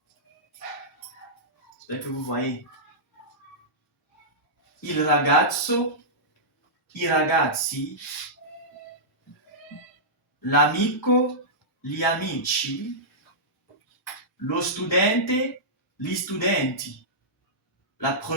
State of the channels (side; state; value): both; normal; correlation -0.14